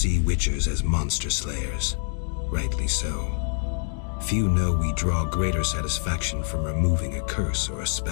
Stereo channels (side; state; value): right; silent; digital silence